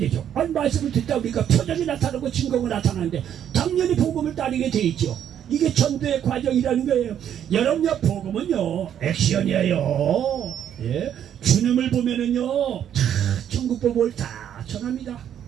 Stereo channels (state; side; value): quieter; left; 9.7 dB